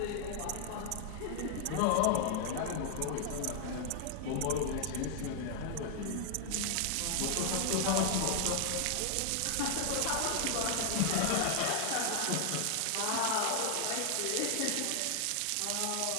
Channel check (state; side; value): different; both; correlation 0.00